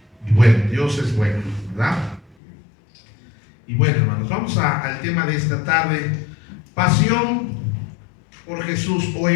Y bueno, Dios es bueno, ¿verdad? Y bueno, hermanos, vamos al tema de esta tarde: pasión por Jesús, o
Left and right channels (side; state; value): right; drops out; at 2.4 s